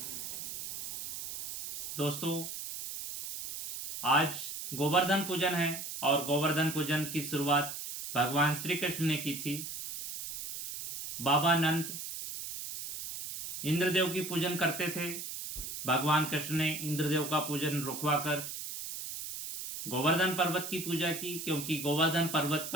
दोस्तों, आज गोवर्धन पूजन है और गोवर्धन पूजन की शुरुआत भगवान श्री कृष्ण ने की थी। बाबा नंद इंद्रदेव की पूजन करते थे। भगवान कृष्ण ने इंद्रदेव का पूजन रुकवाकर गोवर्धन पर्वत की पूजा की, क्योंकि गोवर्धन पर्वत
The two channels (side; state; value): right; noise; hiss, 7 dB below the sound